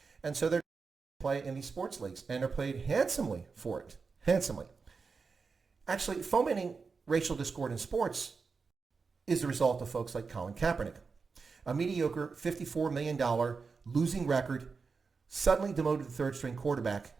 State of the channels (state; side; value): quieter; left; 4.9 dB